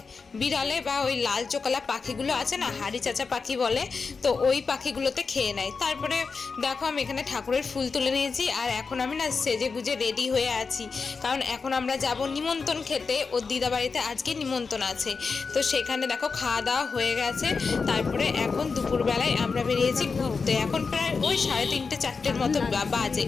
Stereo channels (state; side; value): quieter; right; 4.8 dB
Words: বিড়ালে বা ওই লাল চোকালা পাখিগুলো আছে না, হাড়ি চাচা পাখি বলে, তো ওই পাখিগুলোতে খেয়ে নেয়। তারপরে দেখো আমি এখানে ঠাকুরের ফুল তুলে নিয়েছি, আর এখন আমি না সেজে গুজে রেডি হয়ে আছি, কারণ এখন আমরা যাব নিমন্ত্রণ খেতে। ওর দিদা বাড়িতে আজকে নিমন্ত্রণ আছে, তো সেখানে দেখো খাওয়া দাওয়া হয়ে গেছে। তারপরে এখন দুপুরবেলায় আমরা বেরিয়েছি ঘুরতে। এখন প্রায় ওই 3:30 4টের মতো বাজে।